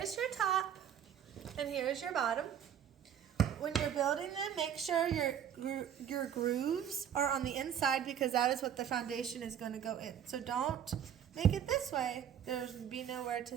is your top, and here is your bottom. When you're building them, make sure your grooves are on the inside because that is what the foundation is going to go in. So don't make it this way. There's be nowhere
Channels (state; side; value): quieter; left; 9.3 dB